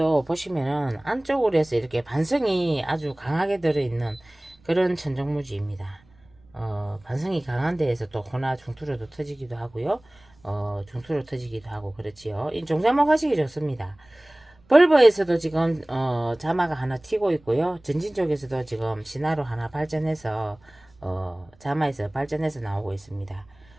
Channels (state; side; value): noise; right; rumble, 29 dB below the sound